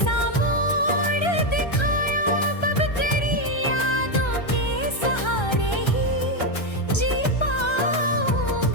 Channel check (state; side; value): late; right; 1.3 ms